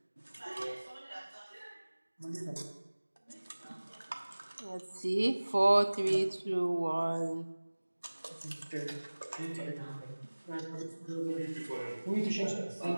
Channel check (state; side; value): inverted; both; correlation -1.00